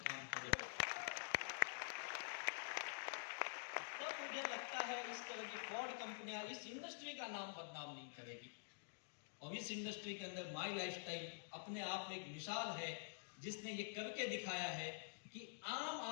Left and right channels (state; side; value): silent; right; digital silence